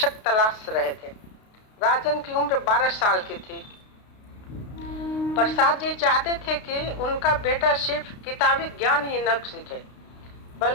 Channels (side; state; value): right; late; 32 ms